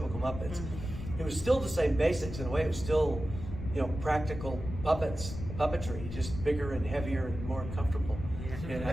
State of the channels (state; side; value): noise; left; rumble, 8 dB below the sound